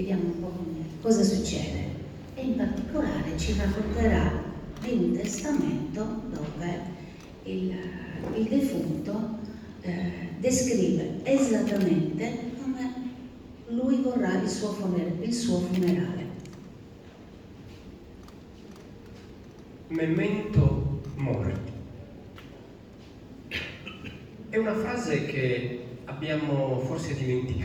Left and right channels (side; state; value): both; identical; correlation 1.00